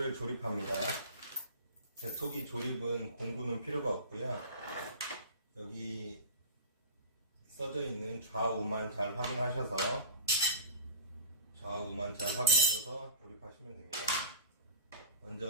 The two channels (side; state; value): both; inverted; correlation -0.36